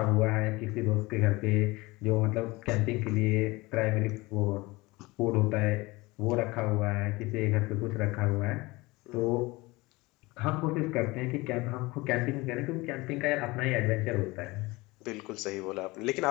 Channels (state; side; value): quieter; right; 22.2 dB